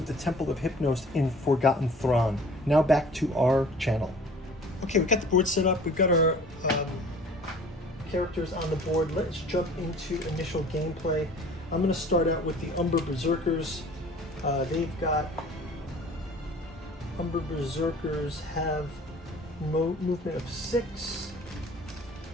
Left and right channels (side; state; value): both; normal; correlation 0.48